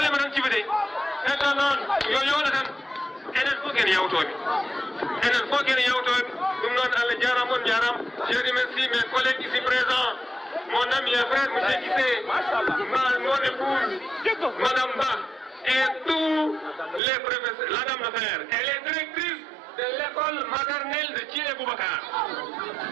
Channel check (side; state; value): left; drops out; at 17.0 s